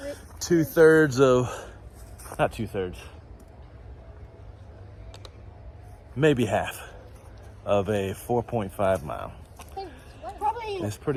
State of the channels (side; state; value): both; identical; correlation 1.00